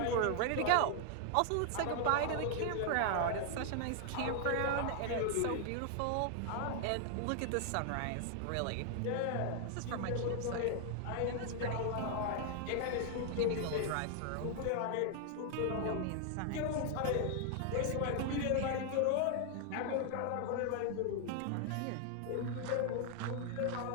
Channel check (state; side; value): different; both; correlation 0.00